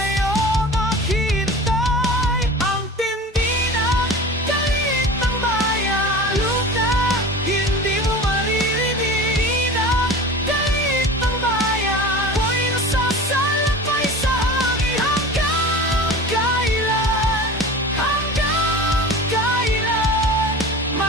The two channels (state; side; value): normal; both; correlation 0.36